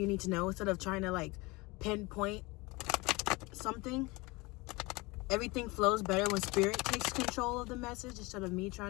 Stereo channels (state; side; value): quieter; right; 24.1 dB